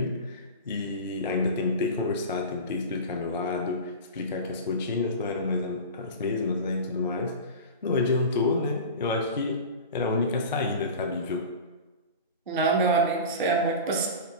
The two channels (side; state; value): both; inverted; correlation -0.30